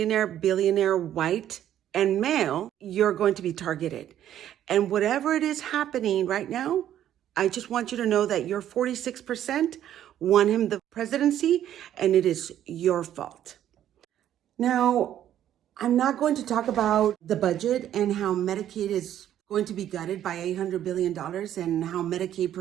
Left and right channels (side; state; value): left; quieter; 11.2 dB